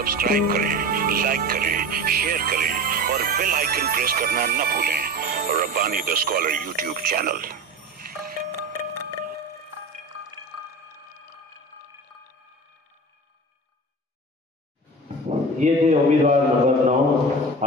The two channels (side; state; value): both; normal; correlation 0.32